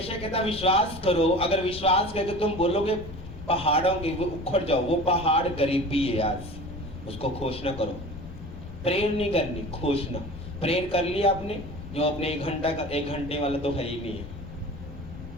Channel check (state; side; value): noise; left; rumble, 13 dB below the sound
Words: कहता विश्वास करो। अगर विश्वास करके तुम बोलोगे पहाड़ों के वो उखड़ जाओ, वो पहाड़ गरीबी है आज, उसको घोषणा करो। प्रेयर नहीं करनी, घोषणा। प्रेयर कर लिया आपने, जो अपने 1 घंटे वाला तो है ही नहीं है,